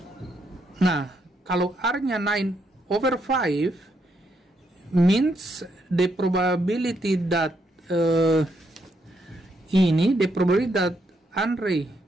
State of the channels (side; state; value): both; normal; correlation 0.77